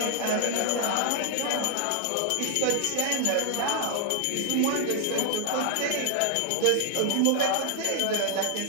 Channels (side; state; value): both; different; correlation 0.00